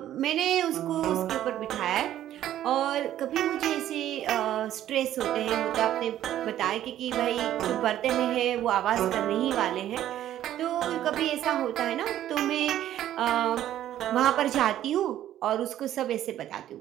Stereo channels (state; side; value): quieter; left; 12.2 dB